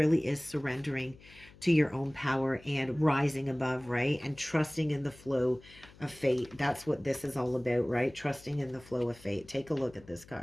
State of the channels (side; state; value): left; noise; hum, 23 dB below the sound